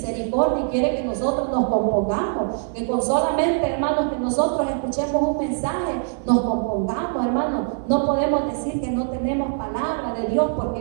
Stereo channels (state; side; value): silent; left; 64 dB below the other